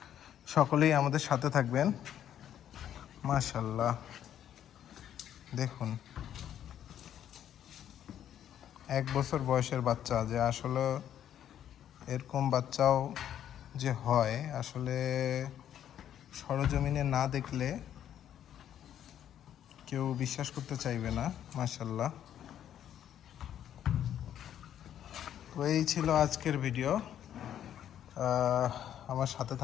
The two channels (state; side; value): quieter; right; 10.4 dB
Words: সকলেই আমাদের সাথে থাকবেন। মাশাআল্লাহ দেখুন, 1 বছর বয়সের বাচ্চা, যে আসলে এরকম বাচ্চাও যে হয় আসলে সরজমিনে না দেখলে কেউ বিশ্বাস করতে চাইবে না। মাশাআল্লাহ। তো এই ছিল আজকের ভিডিও। আমার সাথে